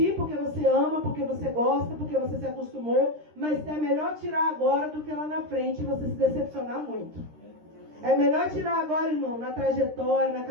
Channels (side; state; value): left; late; 13 ms